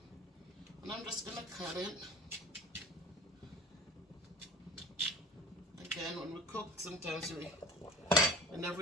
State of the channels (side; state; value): both; normal; correlation 0.41